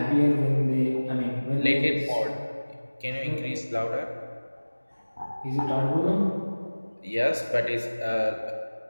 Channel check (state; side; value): inverted; both; correlation -1.00